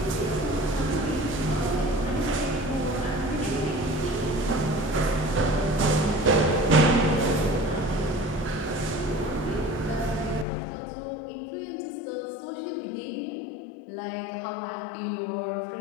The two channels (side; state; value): right; drops out; at 10.5 s